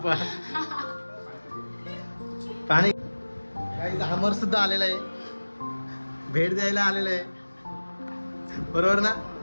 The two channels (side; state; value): both; inverted; correlation -1.00